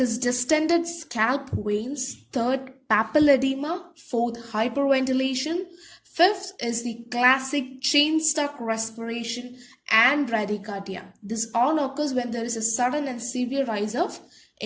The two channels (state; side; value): identical; both; correlation 1.00